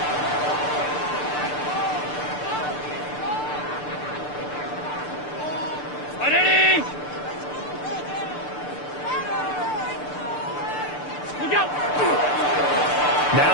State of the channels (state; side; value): late; right; 6.8 ms